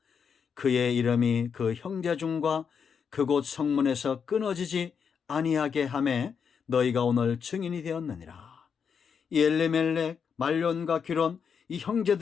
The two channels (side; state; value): right; quieter; 6.6 dB